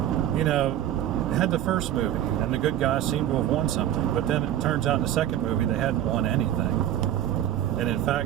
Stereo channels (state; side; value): quieter; left; 11.8 dB